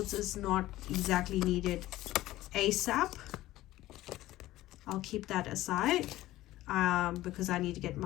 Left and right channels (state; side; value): quieter; right; 16.1 dB